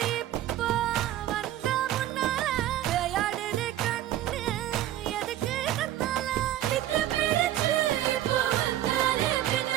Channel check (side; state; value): left; quieter; 13.1 dB